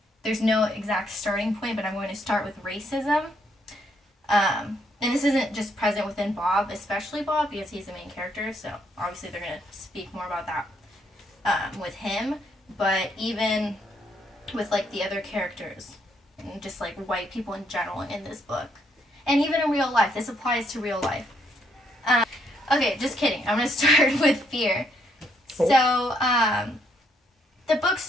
There's no exact starting point, but I'm going to start with racism. And this isn't just present within Bob, especially Bob, because he's the main character, so obviously they're going to speak more about that with him, but even with the other characters, and just white people in general in this book. And even in real life, this applies to real life. Okay, just kidding. I'm going to start with fear. So, the book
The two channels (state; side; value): normal; both; correlation 0.72